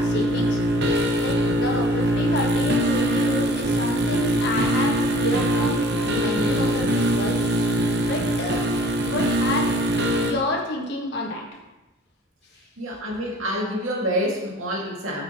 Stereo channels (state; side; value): normal; both; correlation 0.51